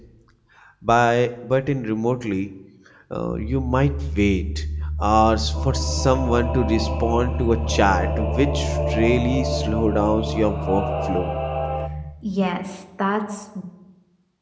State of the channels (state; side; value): identical; both; correlation 1.00